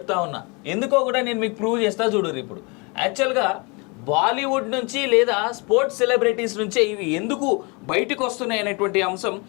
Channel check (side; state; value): right; quieter; 30.1 dB